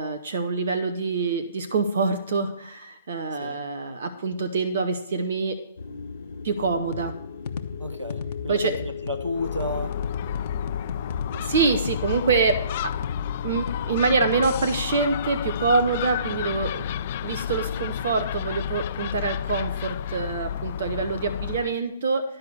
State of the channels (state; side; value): inverted; both; correlation -0.56